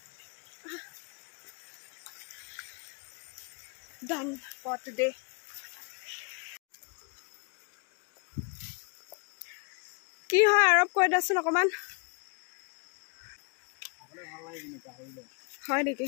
ডান ফৰ টুডে কি হয় আৰৱ কৈ দেচোন অকণমান হয় নেকি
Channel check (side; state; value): right; quieter; 34.9 dB